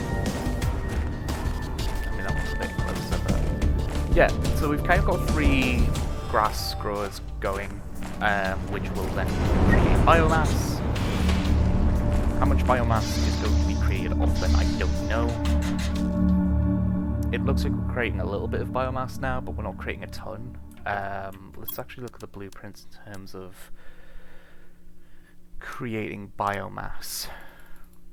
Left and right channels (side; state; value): both; identical; correlation 1.00